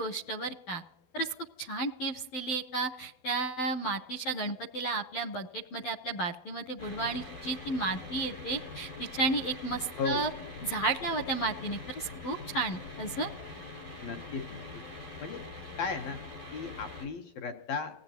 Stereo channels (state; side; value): late; right; 12 ms